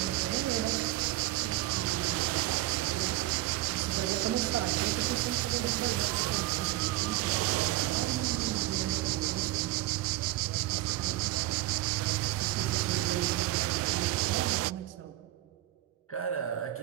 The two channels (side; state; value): left; quieter; 16.3 dB